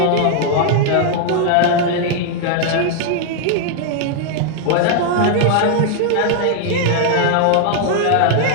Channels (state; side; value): different; both; correlation 0.00